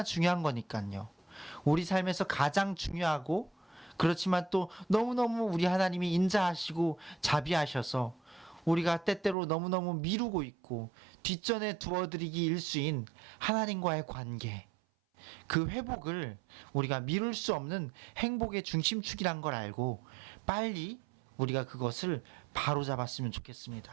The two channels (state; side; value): drops out; left; at 9.3 s